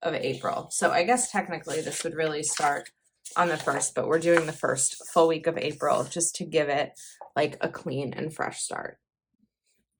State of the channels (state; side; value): identical; both; correlation 1.00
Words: of April. So I guess technically this would really start on the 1st, but we're doing the first full week of April just to give it like a clean and fresh start.